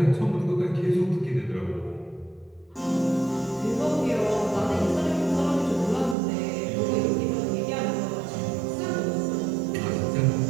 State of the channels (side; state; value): left; drops out; at 6.2 s